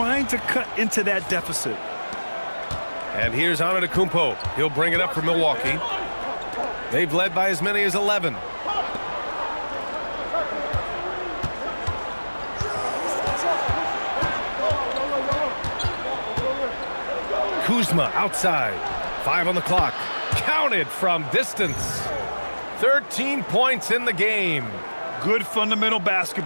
to cut into that deficit. And here's ANTETO. He'll bring it up for Milwaukee. They've led by as many as 11. Kuzma outside. 5 on the clock. Counted from distance. 13 points in the game. Good fundamental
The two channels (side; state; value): both; inverted; correlation -1.00